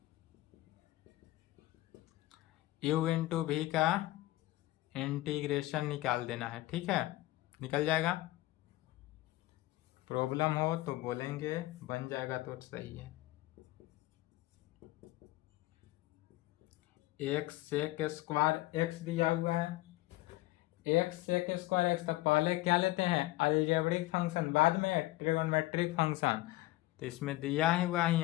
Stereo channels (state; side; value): quieter; right; 18.2 dB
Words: यू इंटू भी का इंटीग्रेशन निकाल देना है, ठीक है, निकल जाएगा। प्रॉब्लम हो तो बोलेंगे, बन जाएगा तो सही है। एक्स सेक स्क्वायर एक्स दिया हुआ है, एक्स सेक स्क्वायर एक्स, तो पहले क्या लेते हैं अलजेब्रिक फंक्शन, बाद में ट्रिगोनोमेट्रिक फंक्शन। तो इसमें दिया हुआ ही